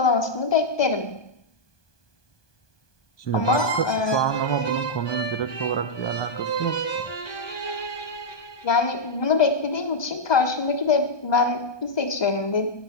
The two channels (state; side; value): late; right; 1.2 ms